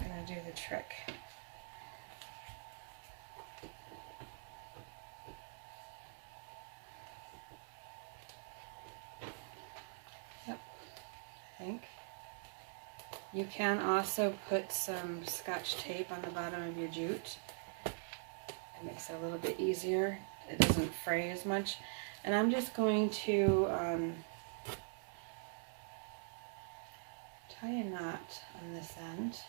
to do the trick. Yep, I think. You can also put some Scotch tape on the bottom of your jute. It makes it a little bit easier. It doesn't fray as much. And I'm just going to tie a knot on this end.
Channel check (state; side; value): silent; left; digital silence